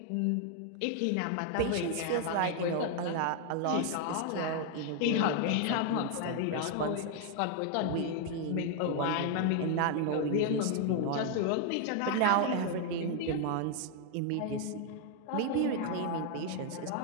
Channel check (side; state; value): both; different; correlation 0.00